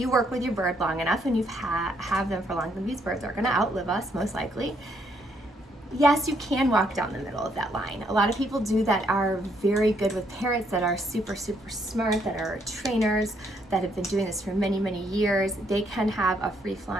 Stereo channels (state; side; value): normal; both; correlation 0.72